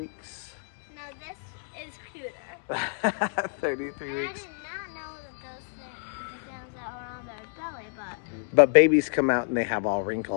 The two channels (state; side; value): silent; right; 59 dB below the other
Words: No, this is cuter. 33 I weeks. did not know those things that were on their belly, but... But babies come out and they have all